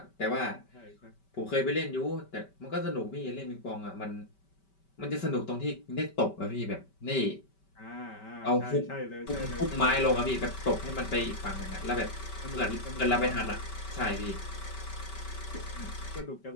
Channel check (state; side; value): late; right; 5.2 ms